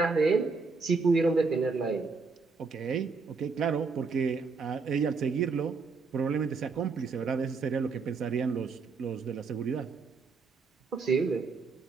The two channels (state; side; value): quieter; left; 4.6 dB